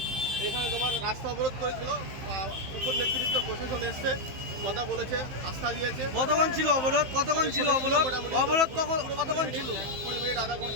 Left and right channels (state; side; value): late; left; 15 ms